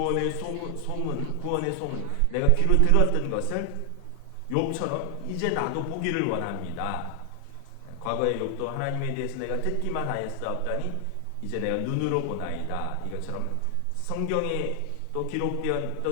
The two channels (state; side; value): different; both; correlation 0.00